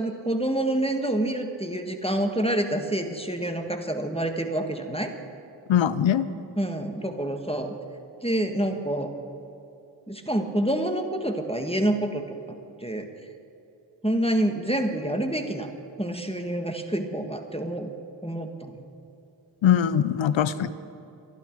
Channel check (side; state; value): both; normal; correlation 0.44